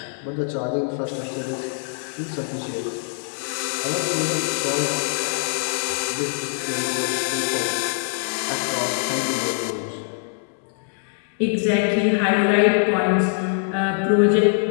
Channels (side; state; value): right; silent; digital silence